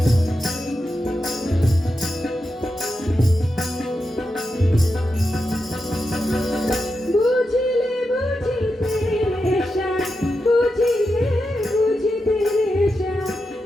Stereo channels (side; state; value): both; normal; correlation 0.88